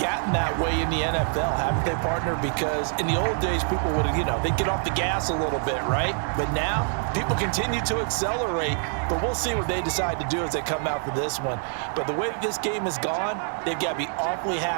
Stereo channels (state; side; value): silent; left; 56 dB below the other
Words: gotten that way in the NFL, haven't they, partner? Because in the old days, people would, they'd get off the gas a little bit, right? But now, people continue to accelerate, but we'll see what they decide to do as they come out for this one. But the way this game has gone, they've got to be awfully